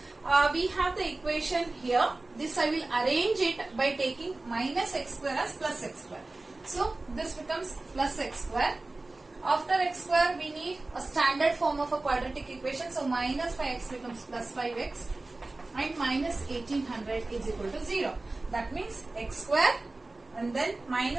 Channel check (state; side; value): quieter; left; 3.1 dB